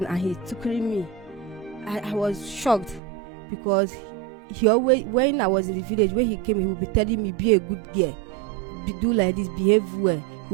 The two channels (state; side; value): drops out; left; at 3.0 s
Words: and he took me. I was shocked because he always, when I was in the village, when he came, he would be telling me, be a good girl, do like this, behave well.